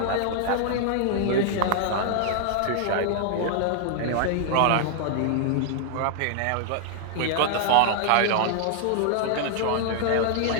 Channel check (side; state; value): both; different; correlation -0.01